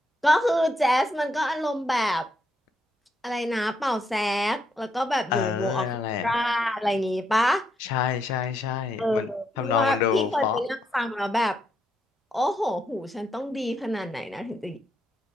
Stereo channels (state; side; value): normal; both; correlation 0.77